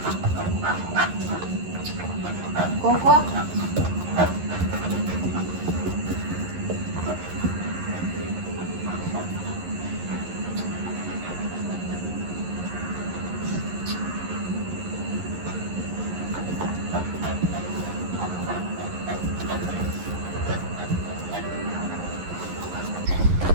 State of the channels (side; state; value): left; late; 11 ms